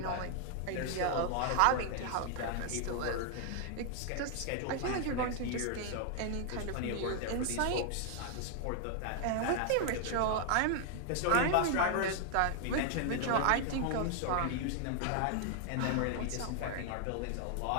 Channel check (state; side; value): different; both; correlation 0.00